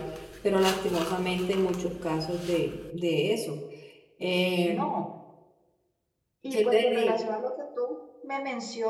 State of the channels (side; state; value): both; identical; correlation 1.00